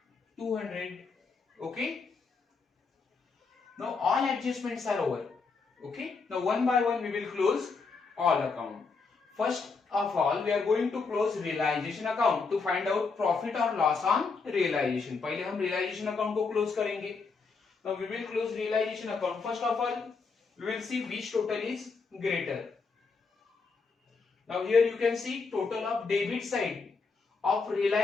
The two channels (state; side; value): quieter; right; 4.6 dB